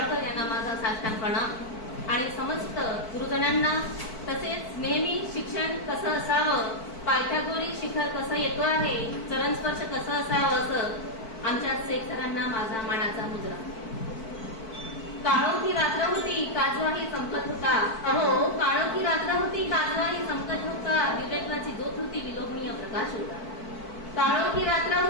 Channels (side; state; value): right; late; 4.5 ms